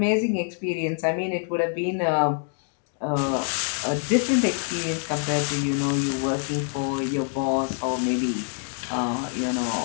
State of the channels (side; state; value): right; silent; 56 dB below the other